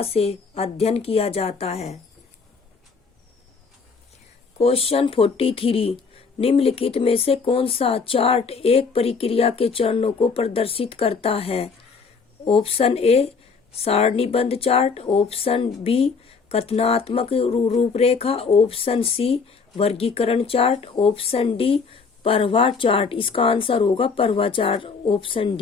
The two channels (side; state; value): right; quieter; 5.1 dB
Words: से अध्ययन किया जाता है। क्वेश्चन 43, निम्नलिखित में से कौन सा चार्ट एक प्रक्रिया के चरणों को प्रदर्शित करता है? ऑप्शन ए, सारणीबद्ध चार्ट। ऑप्शन बी, कथनात्मक रूपरेखा। ऑप्शन सी, वर्गीकरण चार्ट। ऑप्शन डी, प्रवाह चार्ट। इसका आंसर होगा प्रवाह चार्ट, ऑप्शन